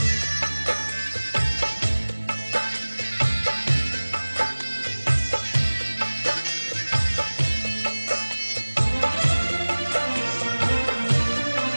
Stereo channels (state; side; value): inverted; both; correlation -1.00